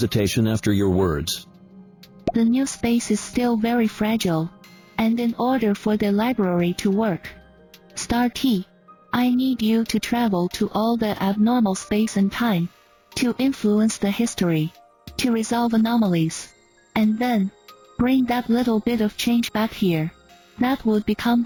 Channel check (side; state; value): both; identical; correlation 1.00